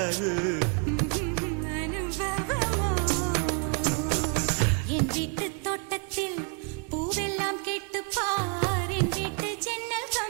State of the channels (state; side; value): quieter; left; 39.1 dB